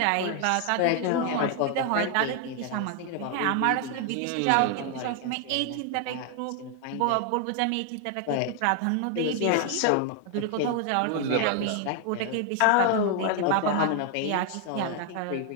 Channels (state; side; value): different; both; correlation 0.00